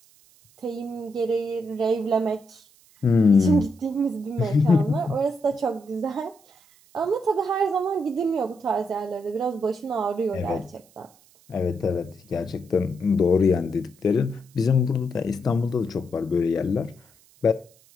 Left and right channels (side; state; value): right; noise; hiss, 29 dB below the sound